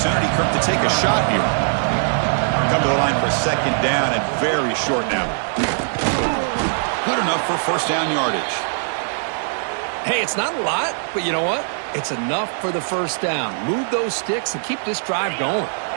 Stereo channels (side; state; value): left; silent; 65 dB below the other